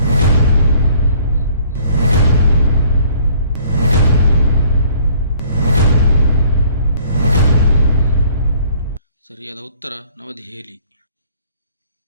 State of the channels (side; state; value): both; inverted; correlation -0.58